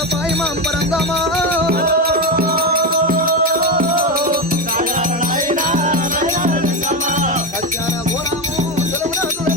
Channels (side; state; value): both; normal; correlation 0.14